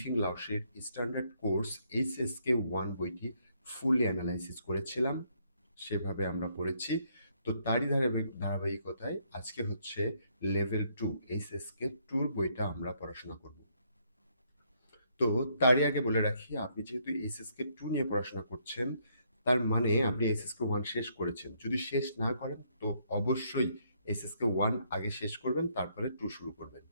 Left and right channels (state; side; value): inverted; both; correlation -0.71